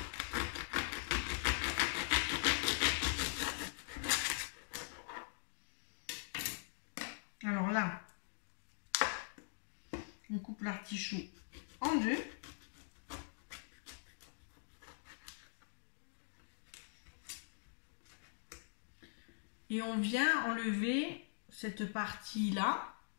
Alors là, on coupe l'artichaut en deux. Et on vient enlever cette partie-là,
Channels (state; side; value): silent; right; digital silence